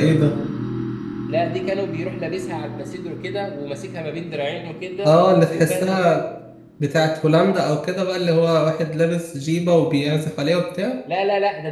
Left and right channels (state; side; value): identical; both; correlation 1.00